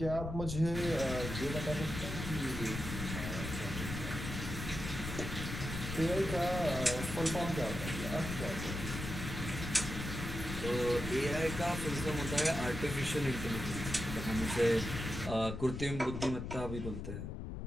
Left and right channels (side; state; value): left; noise; rumble, 6 dB below the sound